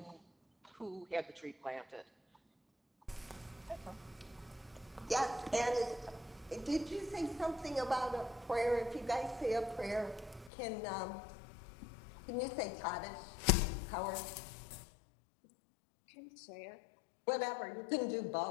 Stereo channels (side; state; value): right; drops out; at 10.5 s